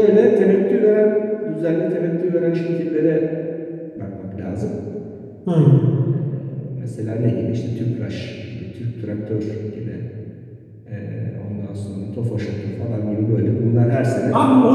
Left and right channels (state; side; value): identical; both; correlation 1.00